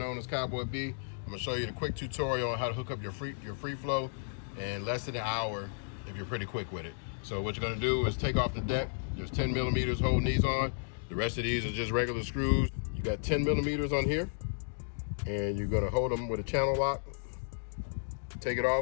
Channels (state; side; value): silent; right; digital silence